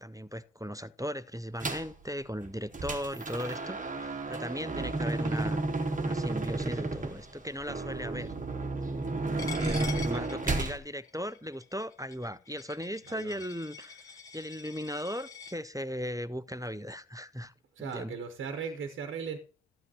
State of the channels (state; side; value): normal; both; correlation 0.65